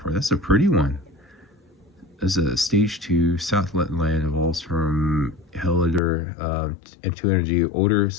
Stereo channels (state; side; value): drops out; right; at 6.0 s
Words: That's a pretty one. This is a stage 2 Southland land evolves from Hellider into energy Odor